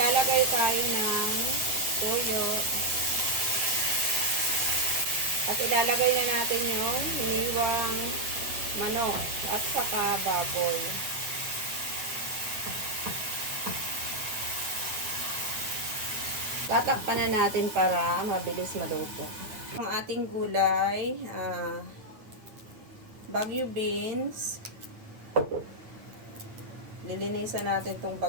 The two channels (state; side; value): late; left; 8.8 ms